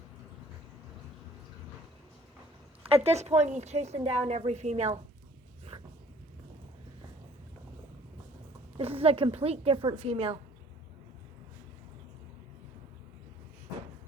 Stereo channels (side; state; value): both; normal; correlation 0.55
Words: At this point, he's chasing down every female. This is a complete different female.